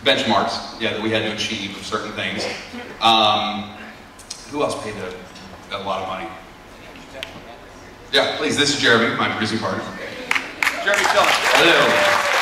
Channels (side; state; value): both; identical; correlation 1.00